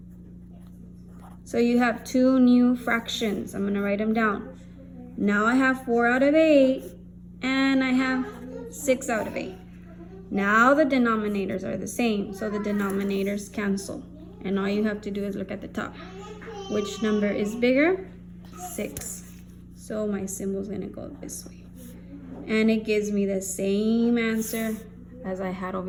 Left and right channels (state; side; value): identical; both; correlation 1.00